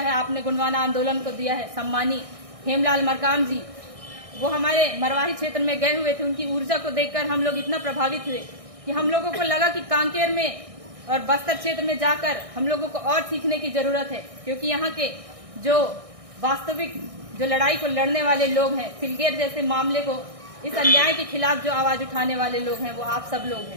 आपने गोंडवाना आंदोलन को दिया है, सम्मानी हेमलाल मरकाम जी, वो हमारे मरवाही क्षेत्र में गए हुए थे। उनकी ऊर्जा को देखकर हम लोग इतना प्रभावित हुए कि हम लोगों को लगा कि कांकेर में और बस्तर क्षेत्र में जाकर हम लोगों को और सीखने की जरूरत है, क्योंकि यहाँ के जो वास्तविक जो लड़ाई को लड़ने वाले लोग हैं, सिलगेर जैसे मामले को, इस अन्याय के खिलाफ जो आवाज उठाने वाले लोग हैं, वो आप सब लोग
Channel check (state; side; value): late; left; 1.6 ms